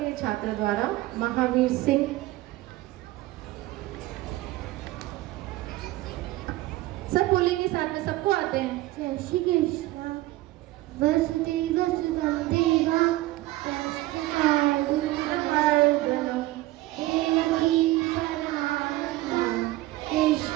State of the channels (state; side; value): quieter; left; 17.9 dB